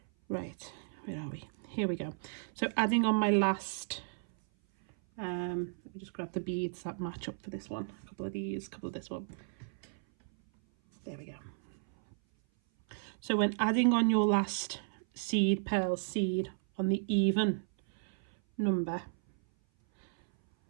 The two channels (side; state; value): left; silent; 55 dB below the other